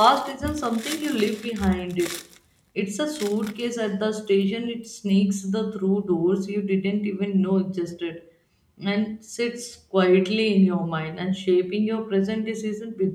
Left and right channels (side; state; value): both; identical; correlation 1.00